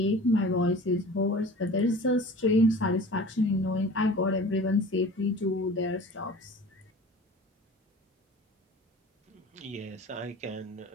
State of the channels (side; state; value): both; normal; correlation 0.41